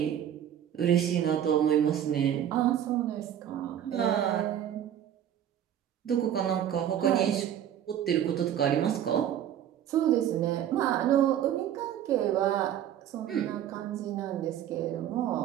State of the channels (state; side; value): quieter; left; 10.4 dB